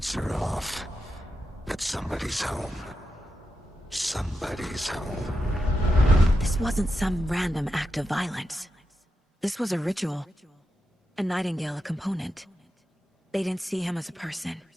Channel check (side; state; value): both; normal; correlation 0.88